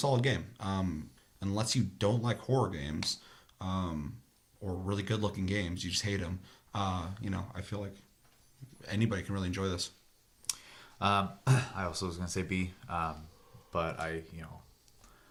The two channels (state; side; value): identical; both; correlation 1.00